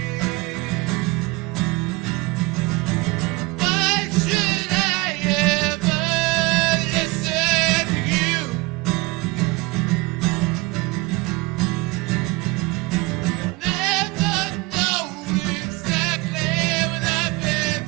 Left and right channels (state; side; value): quieter; left; 23.3 dB